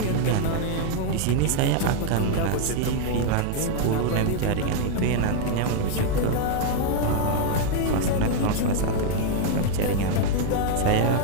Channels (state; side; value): different; both; correlation 0.00